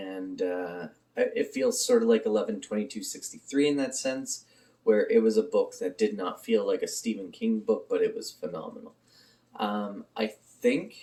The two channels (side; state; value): both; identical; correlation 1.00